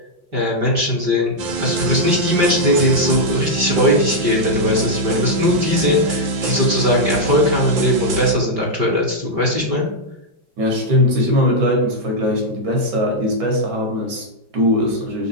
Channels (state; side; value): late; left; 5.8 ms